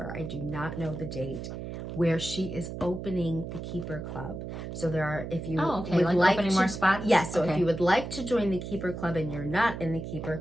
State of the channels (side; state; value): right; noise; hum, 7 dB below the sound